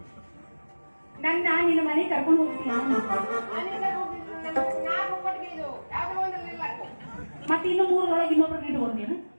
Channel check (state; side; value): inverted; both; correlation -1.00